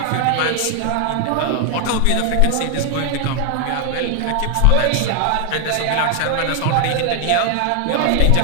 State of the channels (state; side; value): different; both; correlation 0.00